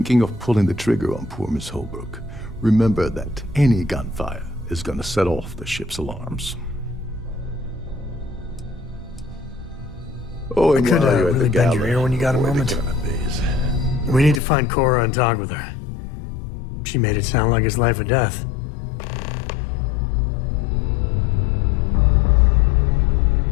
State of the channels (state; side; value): drops out; right; at 14.4 s